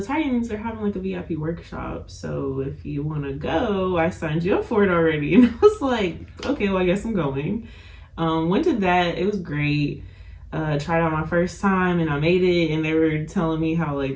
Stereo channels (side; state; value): both; identical; correlation 1.00